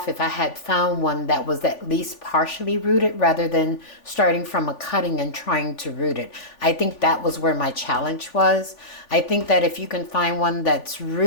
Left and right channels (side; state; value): right; late; 3.5 ms